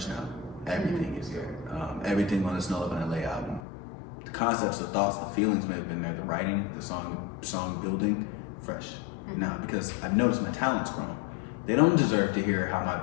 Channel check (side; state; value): right; drops out; at 3.6 s